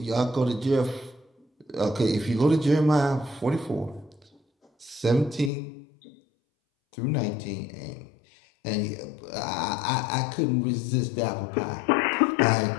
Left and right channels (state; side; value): drops out; right; at 5.5 s